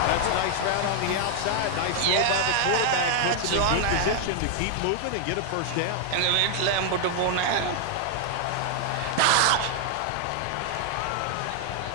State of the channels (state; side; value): different; both; correlation 0.00